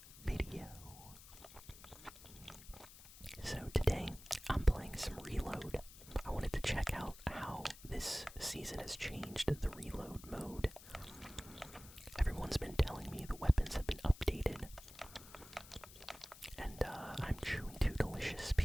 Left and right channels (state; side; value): noise; left; hiss, 18 dB below the sound